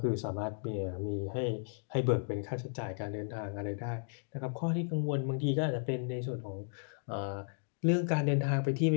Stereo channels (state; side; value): silent; right; digital silence